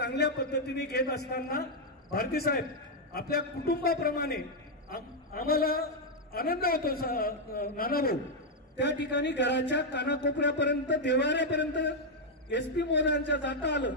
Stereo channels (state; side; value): normal; both; correlation -0.01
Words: पद्धतीने घेत असताना भारती साहेब आपल्या कुटुंबाप्रमाणे आम्हाला आनंद होतो. नानाभाऊ त्या ठिकाणी घराच्या कानाकोपऱ्यापर्यंत, देवाऱ्यापर्यंत SP महोदयांच्या जाता आलं.